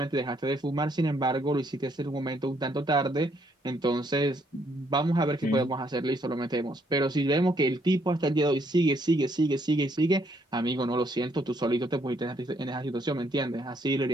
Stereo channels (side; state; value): both; normal; correlation 0.70